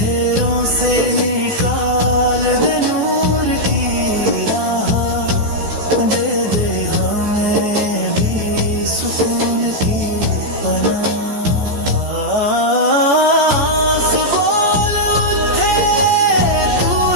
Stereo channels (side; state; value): left; late; 14 ms